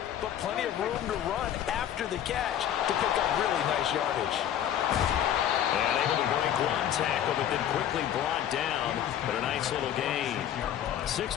but plenty of room to run after the catch to pick up really nice yardage. And able to break one tackle, but then quickly brought down. But a nice little gain.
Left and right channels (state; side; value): quieter; right; 10.5 dB